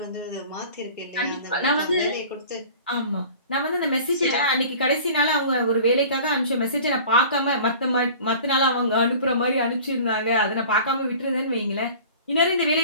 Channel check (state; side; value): inverted; both; correlation -0.43